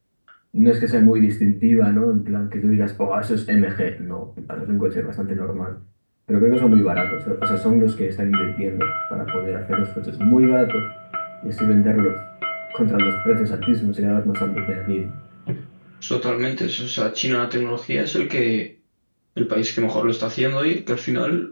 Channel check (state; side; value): inverted; both; correlation -1.00